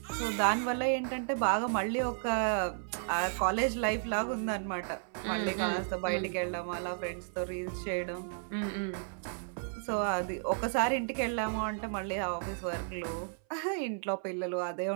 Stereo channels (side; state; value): left; silent; 56 dB below the other